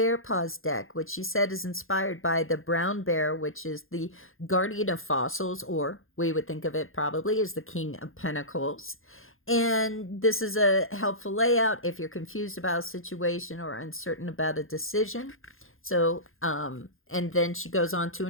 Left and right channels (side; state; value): right; late; 0.60 ms